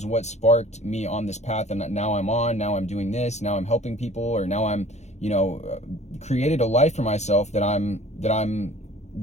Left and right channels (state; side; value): late; right; 0.33 ms